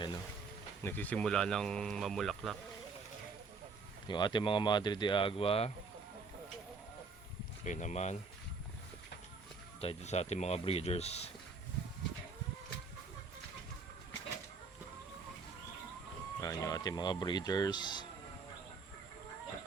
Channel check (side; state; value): left; quieter; 4.6 dB